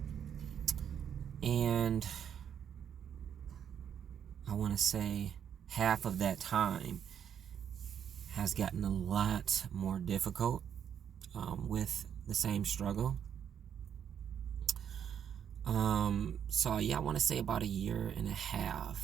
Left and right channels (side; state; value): left; quieter; 8.6 dB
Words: And I want to say half of that time has gotten a lot more difficult with the same struggle. So yeah, I want to say about a year and a